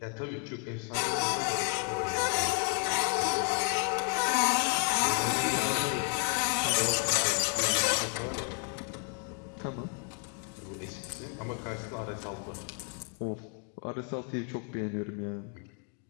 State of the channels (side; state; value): right; quieter; 37.4 dB